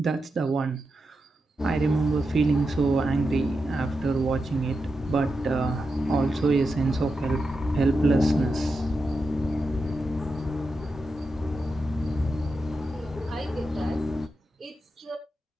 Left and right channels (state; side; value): normal; both; correlation 0.88